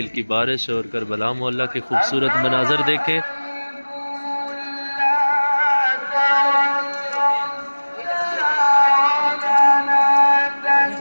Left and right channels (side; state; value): both; inverted; correlation -1.00